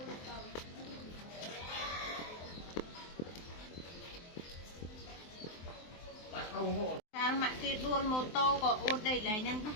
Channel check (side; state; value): right; late; 23 ms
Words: Sao mà cái đuôi mô tô có ôn đầy lại nhân đó.